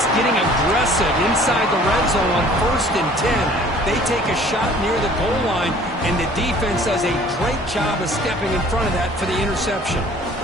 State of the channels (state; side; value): normal; both; correlation 0.52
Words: getting aggressive inside the red zone on 1st and 10. They take a shot near the goal line, and the defense does a great job of stepping in front of that for the interception.